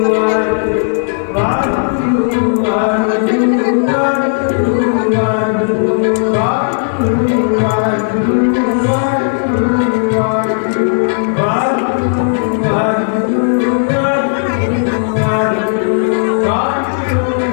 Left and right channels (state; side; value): silent; right; digital silence